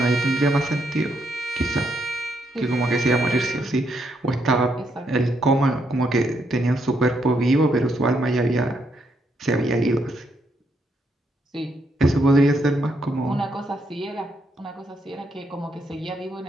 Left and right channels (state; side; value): normal; both; correlation 0.77